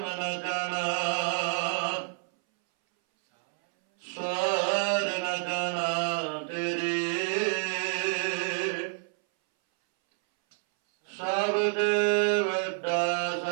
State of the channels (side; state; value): left; silent; 59 dB below the other